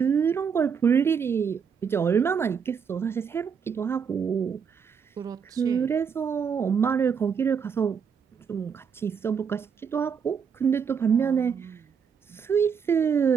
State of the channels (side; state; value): left; quieter; 6.7 dB